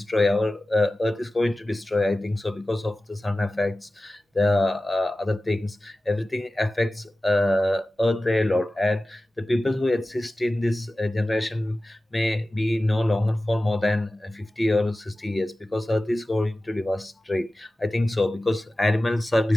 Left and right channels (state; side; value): normal; both; correlation 0.96